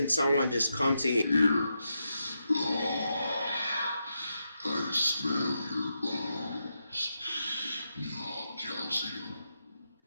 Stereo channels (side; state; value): both; inverted; correlation -0.85